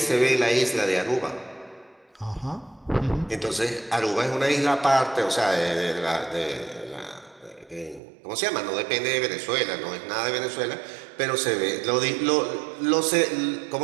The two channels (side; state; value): left; drops out; at 8.0 s